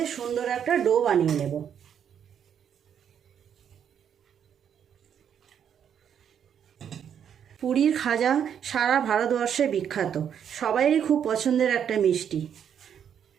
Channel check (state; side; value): quieter; left; 8.5 dB